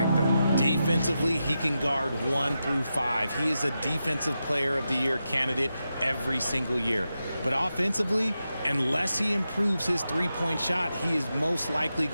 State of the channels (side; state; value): both; inverted; correlation -0.89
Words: though? Defensively, he can guard 1 through 5. He is a Defensive Player of the Year candidate every single year. But offensively, unless he improves his three-point shot, he is most likely